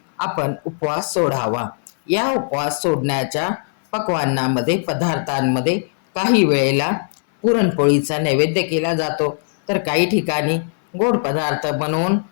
आपण उपवास सोडावा. या उपवास सोडण्याच्या पदार्थांमध्ये काही वेळेला पुरणपोळीचा नैवेद्य केला जातो, तर काही ठिकाणी गोड पदार्थ बनवून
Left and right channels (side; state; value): right; silent; 62 dB below the other